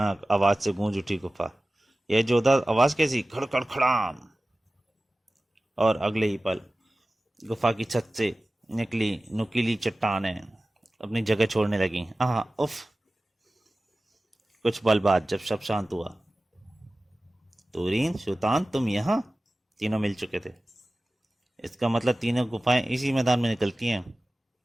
आवाज से गूंज उठी गुफा। यह जोरदार आवाज कैसी? खड़खड़ खड़ाम! और अगले ही पल गुफा की छत से निकली नुकीली चट्टानें अपनी जगह छोड़ने लगी। आह, उफ! कुछ पल बाद जब सब शांत हुआ, तुरीन, सुल्तान, तुम यहाँ? तीनों मिल चुके थे। इसका मतलब तीनों गुफाएं इसी मैदान में निकलती हैं।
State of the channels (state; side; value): normal; both; correlation 0.96